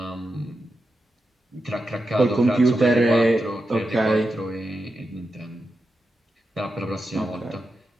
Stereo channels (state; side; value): normal; both; correlation 0.88